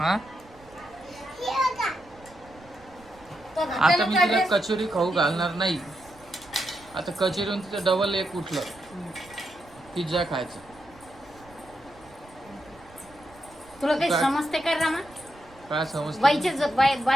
आता मी तिला कचोरी खाऊ घालणार नाही. आता कचोरीहून तिचं डबल एक उठलं, पिझ्झा खायचं. तुला काही समजते का रमा? काय समजतं?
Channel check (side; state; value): right; noise; rumble, 25 dB below the sound